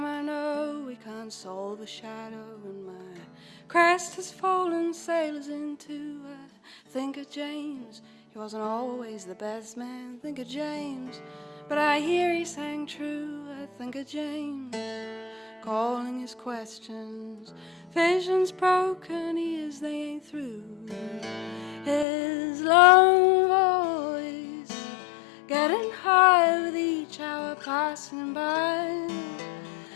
I know we can't solve a shadow, and my crest has fallen sailors into. I think of James, he wasn't always the best man. Think of James, but I hear he sang true. I think of James, calling his questions. Visions broken, ears they ain't through. His long voice getting higher with each hour passing by,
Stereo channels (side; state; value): right; drops out; at 22.1 s